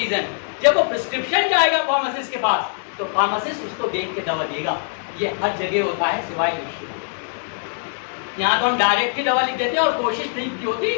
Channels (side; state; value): right; silent; digital silence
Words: जब वो प्रिस्क्रिप्शन जाएगा फार्मासिस्ट के पास तो फार्मासिस्ट उसको देख के दवा देगा। ये हर जगह होता है सिवाय विश्व। यहाँ तो हम डायरेक्ट ही दवा लिख देते हैं और कोशिश नहीं होती